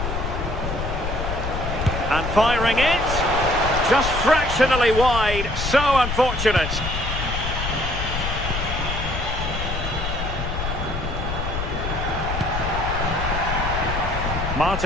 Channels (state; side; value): noise; left; rumble, 4 dB below the sound